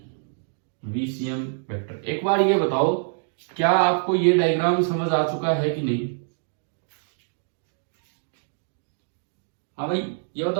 VCM vector. एक बार ये बताओ, क्या आपको ये डायग्राम समझ आ चुका है कि नहीं? हाँ भाई, ये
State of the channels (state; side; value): silent; left; digital silence